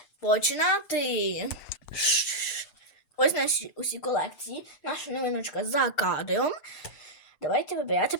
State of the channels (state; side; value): late; right; 8.0 ms